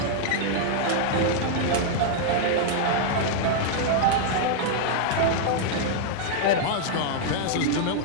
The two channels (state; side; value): different; both; correlation -0.01